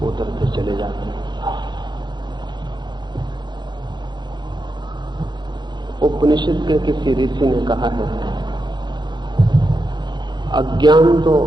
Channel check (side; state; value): left; late; 0.21 ms